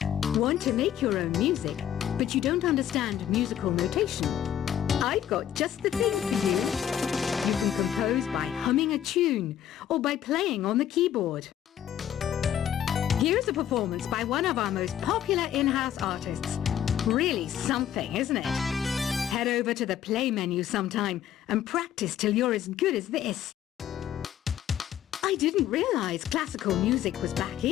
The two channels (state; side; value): quieter; right; 10.5 dB